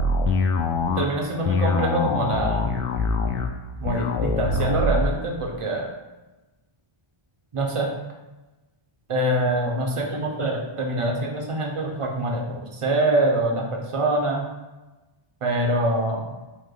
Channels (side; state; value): left; late; 1.5 ms